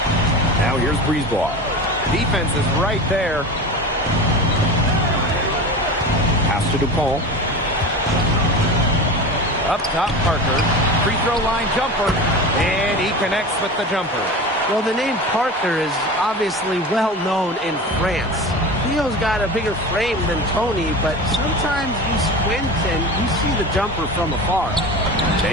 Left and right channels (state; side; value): normal; both; correlation 0.30